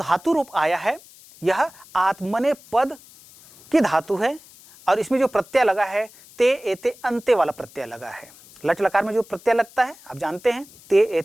रूप आया है यह आत्मनेपद पद की धातु है, और इसमें जो प्रत्यय लगा है ते एते अंते वाला प्रत्यय लगा है। लट लकार में जो प्रत्यय लगता है आप जानते हैं, ते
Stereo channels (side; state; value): left; noise; hiss, 23 dB below the sound